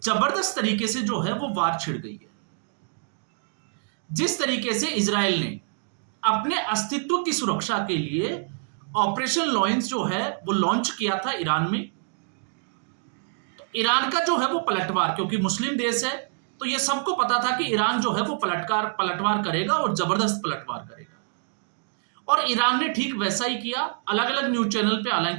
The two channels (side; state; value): left; silent; digital silence